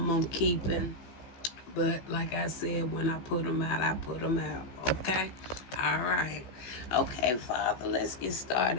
keeping. But like I said, when I put them out, I put them out. Okay? All right. Okay, Father, let's get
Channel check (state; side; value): late; right; 16 ms